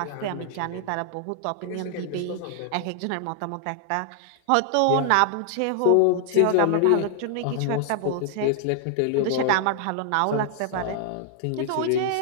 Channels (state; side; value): different; both; correlation 0.00